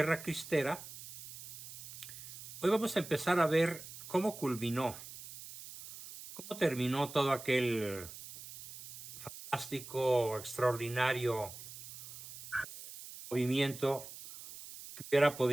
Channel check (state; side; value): noise; right; hiss, 13 dB below the sound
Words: Cristera. Hoy vamos a empezar a ver cómo culminó, cómo terminó todo aquel fantástico, extraordinario movimiento que hubiera